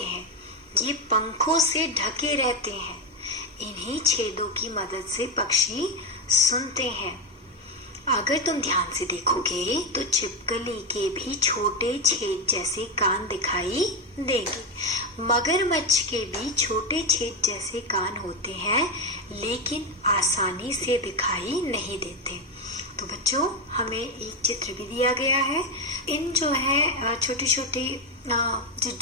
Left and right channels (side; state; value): both; normal; correlation 0.11